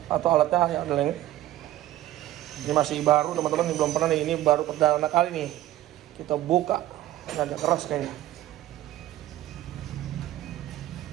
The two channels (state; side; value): quieter; left; 14.3 dB